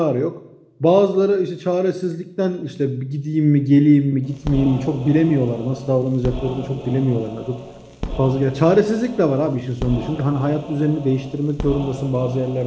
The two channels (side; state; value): both; identical; correlation 1.00